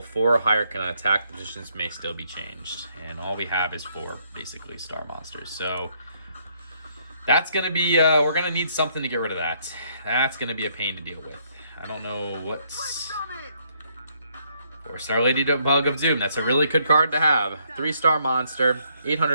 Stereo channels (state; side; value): inverted; both; correlation -0.71